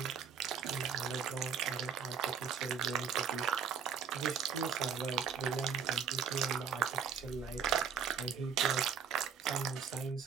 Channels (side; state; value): left; quieter; 7.0 dB